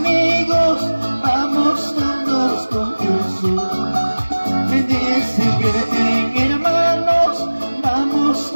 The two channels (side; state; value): both; inverted; correlation -1.00